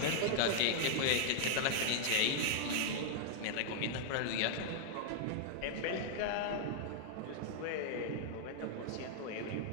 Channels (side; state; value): both; different; correlation 0.00